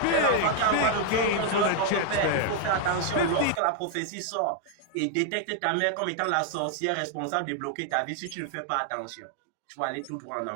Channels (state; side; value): different; both; correlation 0.00